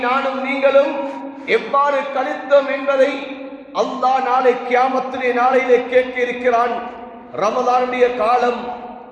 நானும் நீங்களும் எவ்வாறு கழித்தோம் என்பதை அல்லாஹ் நாளை கியாமத்துடைய நாளையிலே கேட்க இருக்கிறான். ரமலானுடைய காலம்,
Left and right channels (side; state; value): both; identical; correlation 1.00